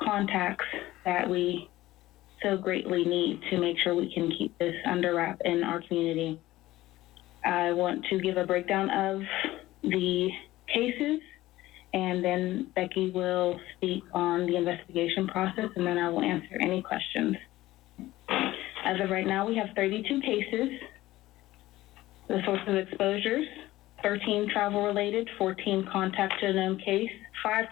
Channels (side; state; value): right; quieter; 16.6 dB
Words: that we so greatly need to make sure we can keep this under wrap in our community. I want to give a breakdown of the cases, and then Becky will speak on the investigation process, and then I will answer any questions. As of right now, we have 32 cases. The source of exposures, 13 travel-related, 14 contact to a known case, 5